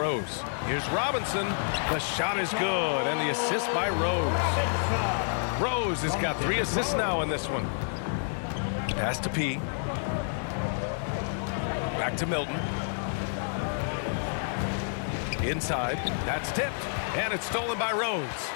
Here's Robinson. The shot is good, and the assist by Rose. Rose has got 3 assists now in this one. Pass to P. Back to Milton. Inside. That's tipped, and it's stolen by Rose.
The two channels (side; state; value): right; silent; 59 dB below the other